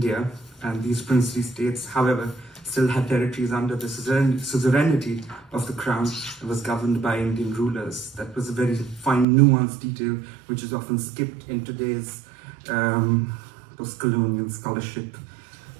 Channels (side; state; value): left; drops out; at 9.2 s